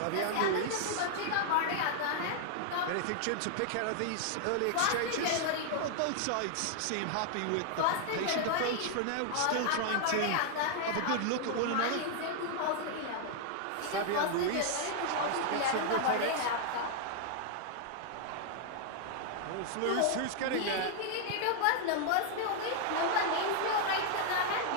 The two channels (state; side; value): different; both; correlation 0.00